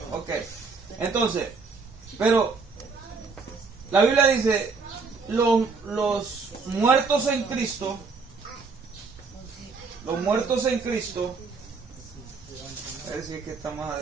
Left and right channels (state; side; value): quieter; left; 4.6 dB